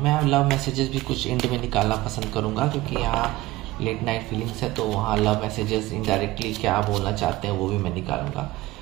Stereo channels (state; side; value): quieter; left; 18.4 dB